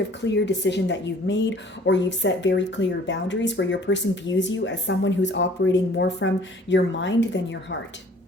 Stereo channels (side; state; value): both; normal; correlation 0.53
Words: of clear decision that you've made, or you've set very clear boundaries where your person views you as someone who's operating more from your mind than your heart.